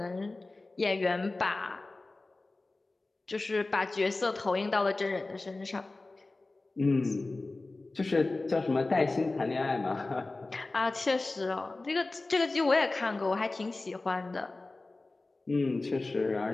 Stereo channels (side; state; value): right; quieter; 3.2 dB